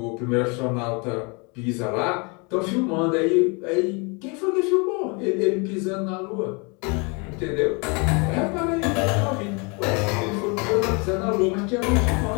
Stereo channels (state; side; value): quieter; right; 31.5 dB